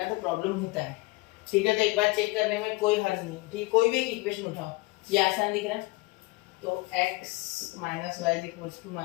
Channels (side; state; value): right; quieter; 22.7 dB